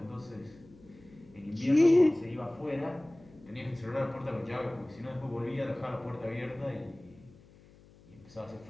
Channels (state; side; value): noise; left; hum, 24 dB below the sound